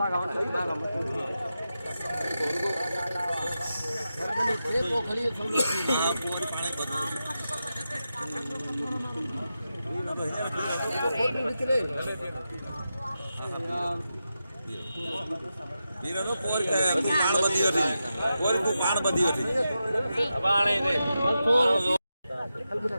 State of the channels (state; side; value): inverted; both; correlation -0.90